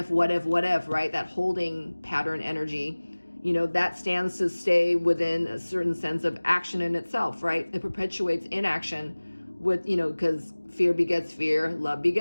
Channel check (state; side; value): inverted; both; correlation -1.00